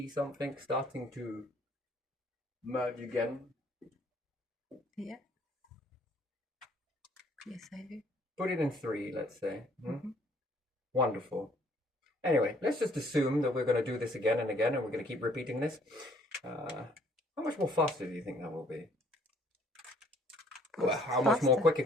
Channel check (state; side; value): normal; both; correlation 0.60